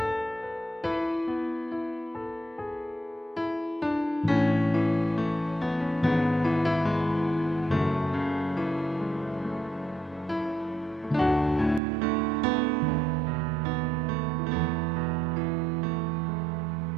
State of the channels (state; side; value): drops out; left; at 11.8 s